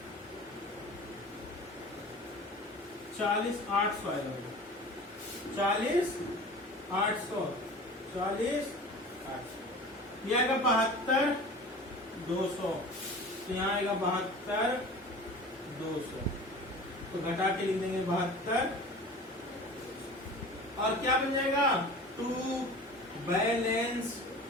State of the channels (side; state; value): both; normal; correlation 0.39